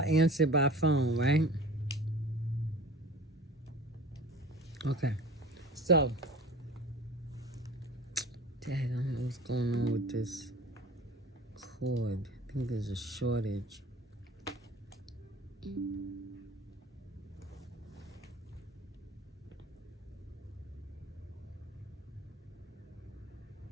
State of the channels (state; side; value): normal; both; correlation 0.40